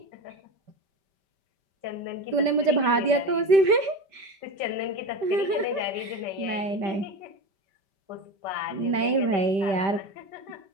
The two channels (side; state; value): left; late; 5.1 ms